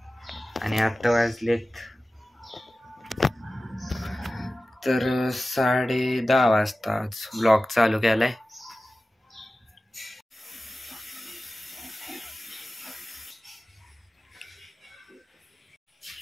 आणि आत्ता वाजलेत तर 10:30 वाजता आज ब्लॉग चालू केलाय.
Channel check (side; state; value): both; normal; correlation 0.96